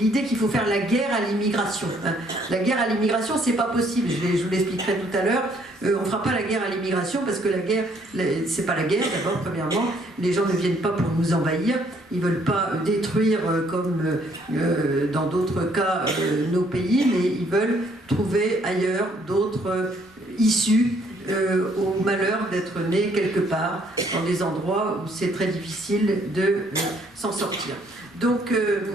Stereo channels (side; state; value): both; normal; correlation 0.66